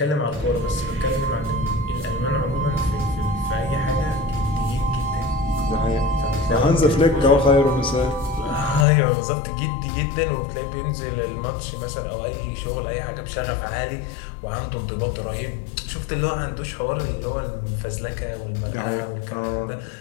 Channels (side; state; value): right; drops out; at 8.8 s